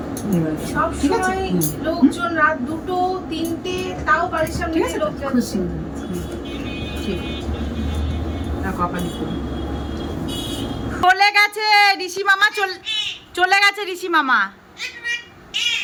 সব ঠিক আছে? সময় লোকজন রাত 2টো 3টে তাও বাড়ির সামনে ঠিক আছে, লোক খুব যাচ্ছে। সুন্দর। ঠিক আছে, না কপালি করুন। চলে গেছে ঋষি মামা, চলে গেছে ঋষি মামা।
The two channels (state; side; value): identical; both; correlation 1.00